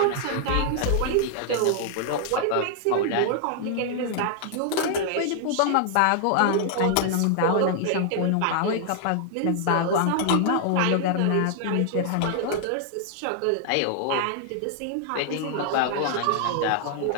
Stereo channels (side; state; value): both; different; correlation 0.00